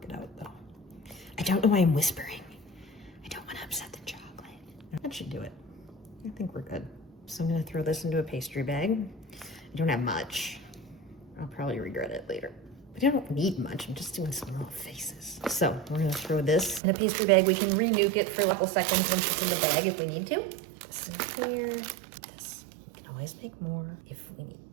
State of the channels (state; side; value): drops out; left; at 16.8 s